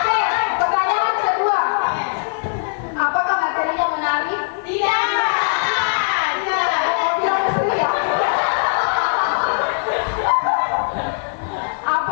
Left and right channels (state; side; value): silent; right; 64 dB below the other